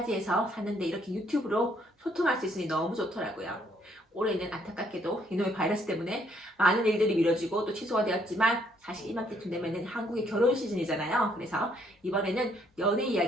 샀는데 이렇게 유튜브로 소통할 수 있으니 너무 좋더라고요. 올해는 안타깝게도 이놈의 바이러스 때문에 많은 일들이 미뤄지고 또 취소가 되었지만 사실 이맘때쯤 되면은 한국의 결혼 시즌이잖아요. 그래서 이번에는 연애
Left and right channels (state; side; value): normal; both; correlation 0.68